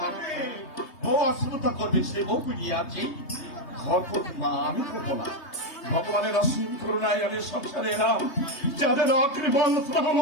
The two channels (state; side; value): late; right; 3.2 ms